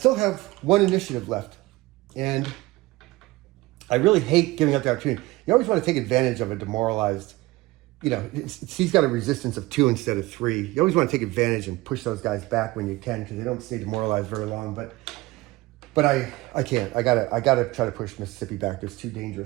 have 1 initiative left. And I really hate giving up the opportunity. You always want to take advantage of a demoralized, he's got a resistance of 2 instead of 3. You always want to take advantage and push those guys back when you can, because they don't stay demoralized very long. But I can't. I gotta try to push Mississippi back. It's too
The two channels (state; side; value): quieter; left; 20.4 dB